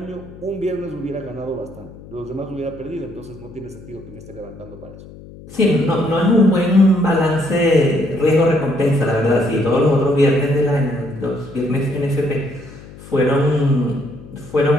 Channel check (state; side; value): noise; left; hum, 18 dB below the sound